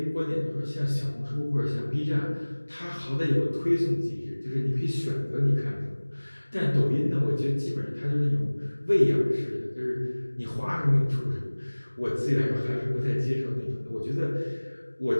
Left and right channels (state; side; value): inverted; both; correlation -1.00